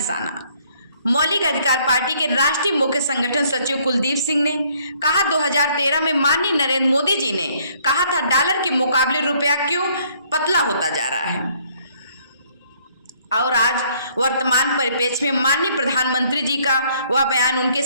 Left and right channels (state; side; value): inverted; both; correlation -0.64